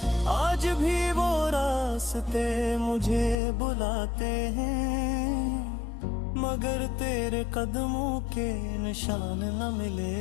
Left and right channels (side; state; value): right; drops out; at 3.4 s